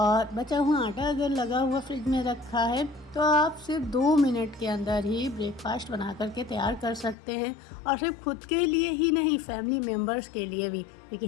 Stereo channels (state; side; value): drops out; right; at 7.2 s